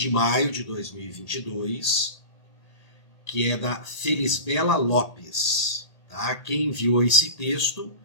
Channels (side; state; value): right; late; 1.8 ms